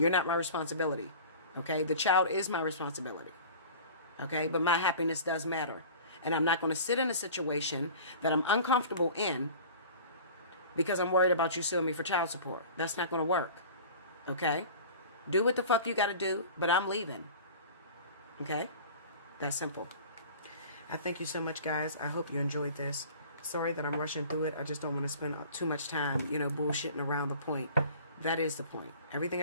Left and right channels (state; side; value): inverted; both; correlation -0.41